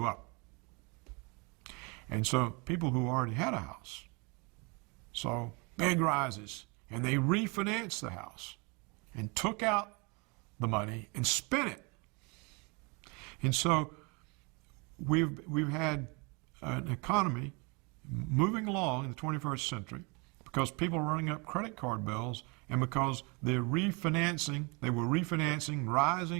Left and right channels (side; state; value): left; quieter; 30.0 dB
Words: up. And so people who already had a house saw big rises, and they refinanced the house and took out the money and spent it. And so we've had an economy moving along in the 21st century because people are running up credit card bills, and because they were refinancing